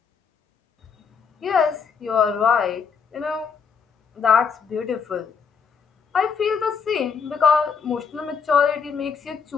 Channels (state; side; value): quieter; right; 6.1 dB